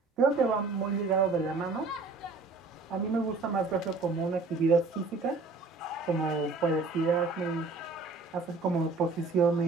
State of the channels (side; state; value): left; quieter; 3.9 dB